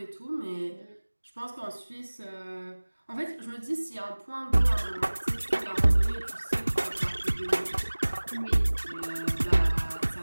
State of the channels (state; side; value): inverted; both; correlation -1.00